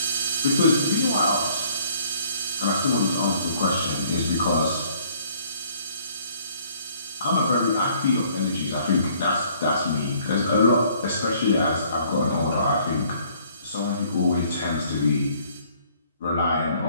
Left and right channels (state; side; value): inverted; both; correlation -0.60